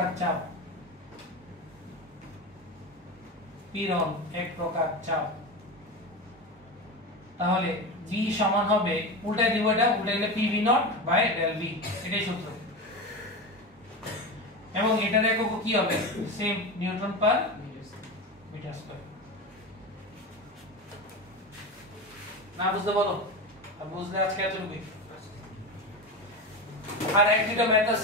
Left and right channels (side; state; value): both; normal; correlation 0.23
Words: চাপ, পীড়ন এক প্রকার চাপ। তাহলে V সমান হবে, উল্টায় দিব, এটা উল্টায় গেলে PV naught by del V, এটাই সূত্র। এবং এটার একক কি হবে, same newton per metre square. না বুঝতে বলো, আর বুঝলে আজকে এতটুকুই। আর এক দুটো ম্যাথ